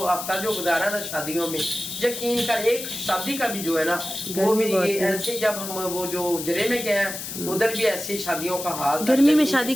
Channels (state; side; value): noise; left; hiss, 7 dB below the sound